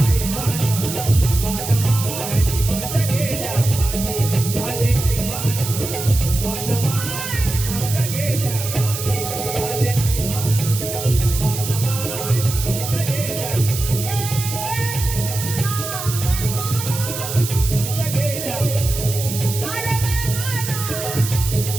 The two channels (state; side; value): noise; right; hiss, 6 dB below the sound